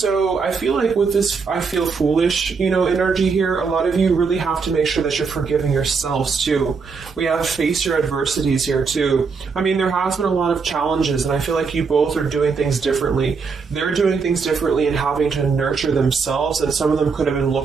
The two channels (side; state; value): left; quieter; 5.1 dB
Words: I feel like with this I feel foolish, you know, energy here, a lot of you really have to make sure that you're forgiving yourselves too. We have face your adversities here too. I mean, there has been a lot of challenges, and I feel like you both are doing things differently. They're doing things differently and having to nurture themselves, and some of them could have been